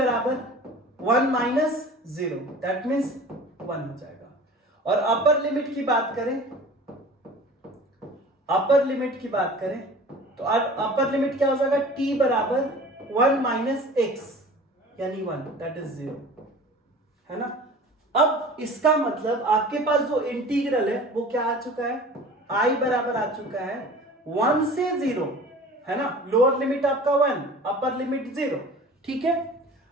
1 minus 0, दैट मीन्स 1 हो जाएगा। और अपर लिमिट की बात करें, तो अपर लिमिट क्या हो जाएगा, t बराबर 1 minus x यानी 1, दैट इज 0, है ना। अब इसका मतलब आपके पास जो इंटीग्रल है वो क्या आ चुका है, i बराबर आ चुका है 1 से 0, है ना। लोअर लिमिट आपका 1, अपर लिमिट 0। ठीक है,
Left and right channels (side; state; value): both; normal; correlation 0.42